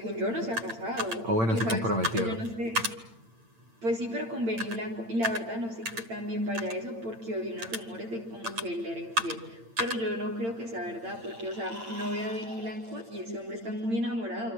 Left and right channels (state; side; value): late; left; 8.8 ms